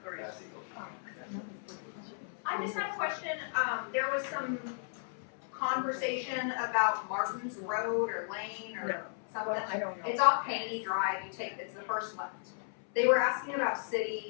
I just have a question. There was some conversation about Martin's Road or Lane or something. I don't know. It's off Paney Drive. It's the first left. They were asking about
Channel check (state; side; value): silent; right; 55 dB below the other